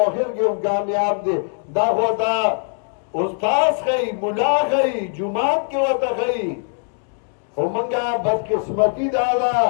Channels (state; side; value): silent; right; 61 dB below the other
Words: آخر کې هم کامیاب دی دا خو ته استاد ښیي ملا ښیي جومات کې ورته ښیي خو مونږه بدقسمتي دا ده